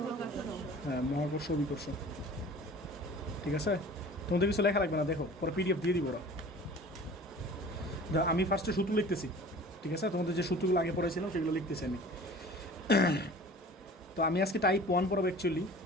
বিকর্ষ। হ্যাঁ, মহাকর্ষ বিকর্ষ। ঠিক আছে, তোমাদের কিছু লেখা লাগবে না, দেখো পরে পিডিএফ দিয়ে দিব ওরা। আমি ফার্স্টে সূত্র লিখতেছি, ঠিক আছে? তোমাদের যে সূত্রগুলো আগে পড়েছিলাম সেগুলো লিখতেছি আমি। তো আমি আজকে টাইপ 1 পড়াবো অ্যাকচুয়ালি।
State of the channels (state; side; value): normal; both; correlation 0.43